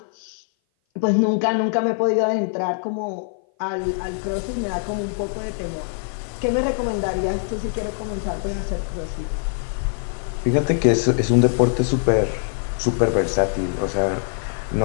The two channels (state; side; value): silent; right; 57 dB below the other